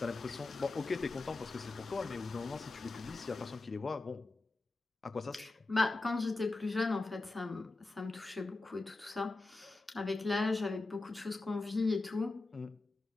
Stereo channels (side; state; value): right; quieter; 3.3 dB